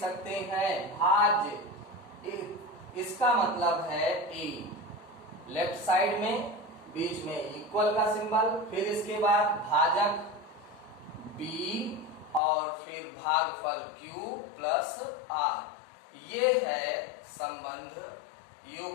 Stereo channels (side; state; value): right; drops out; at 12.4 s